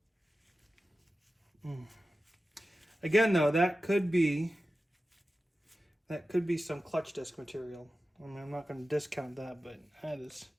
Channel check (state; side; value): normal; both; correlation 0.93